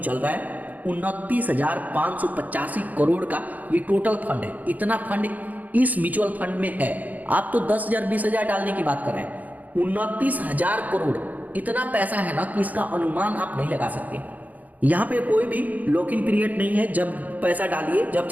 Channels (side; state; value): left; late; 0.079 ms